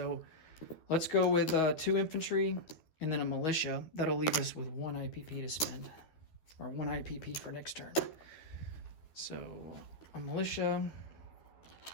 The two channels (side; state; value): right; late; 12 ms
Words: let's go with 2 infantry and then a militia. That'll leave us with 1 IPP to spend, or 1 IPP for next turn. So a militia